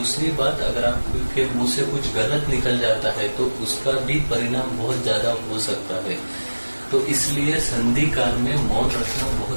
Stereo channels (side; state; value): both; inverted; correlation -1.00